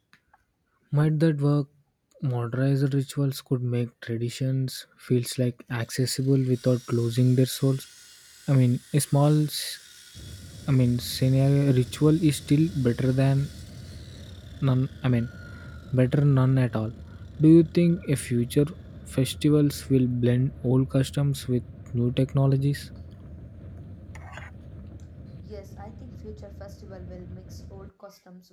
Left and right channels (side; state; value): both; identical; correlation 1.00